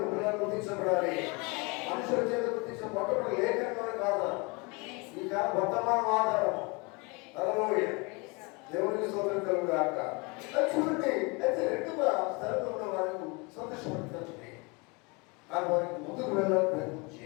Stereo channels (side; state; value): right; quieter; 28.8 dB